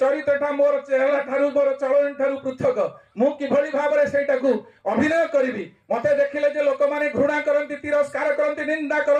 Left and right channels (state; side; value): identical; both; correlation 1.00